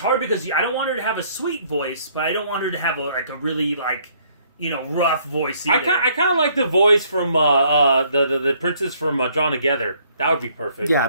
because I don't want her to have a sweet voice, but I don't want her to have a really rough voice either. I kind of like the voice from the princess from Drawn Together. That would be perfect.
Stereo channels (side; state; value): both; inverted; correlation -0.64